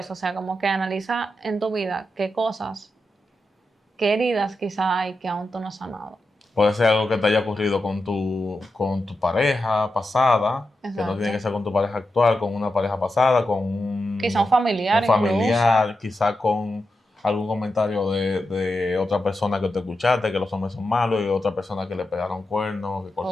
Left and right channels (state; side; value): normal; both; correlation 0.89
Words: o sea, como que analiza en tu vida qué cosas, qué heridas quizá hay que aún tú no has sanado. Puede ser algo que te haya ocurrido con tu pareja pasada, que no Exacto. tiene que ser con tu pareja actual, con una pareja pasada, con Quizá un familiar familiar, quizá con algún comentario de otra persona que te escuchaste, que los hombres son malos, y otra persona que le pegaron cuernos, que incluso,